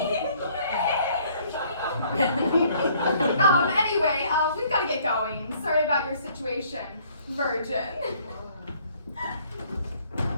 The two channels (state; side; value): inverted; both; correlation -0.60